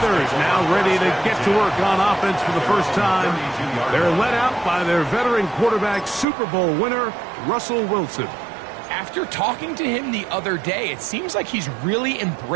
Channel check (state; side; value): drops out; left; at 6.2 s